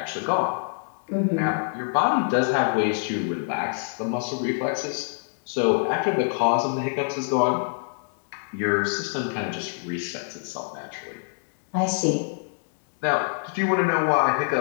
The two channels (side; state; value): right; silent; digital silence